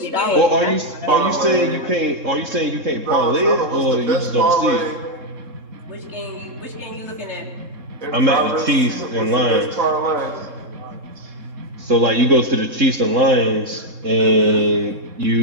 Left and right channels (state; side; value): late; left; 3.7 ms